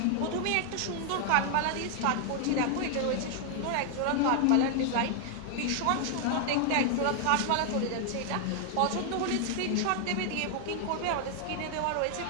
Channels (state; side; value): different; both; correlation 0.00